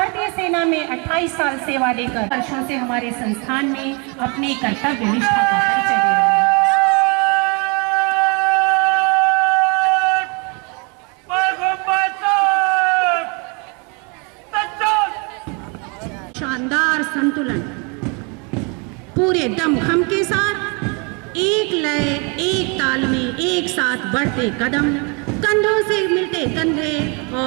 सेना में 28 साल सेवा देकर वर्षों से हमारे संस्थान में अपने कर्तव्य निष्ठा का परिचय दे रहे हैं। शानदार संतुलन, पूरे दमखम के साथ एक लय, एक ताल में एक साथ बढ़ते कदम, कंधों से मिलते कंधे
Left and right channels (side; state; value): left; quieter; 32.9 dB